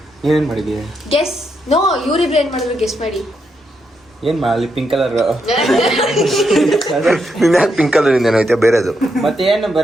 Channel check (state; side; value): normal; both; correlation 0.81